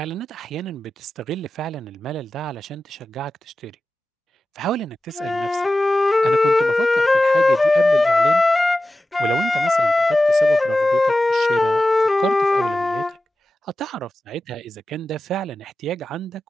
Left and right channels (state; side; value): normal; both; correlation 0.94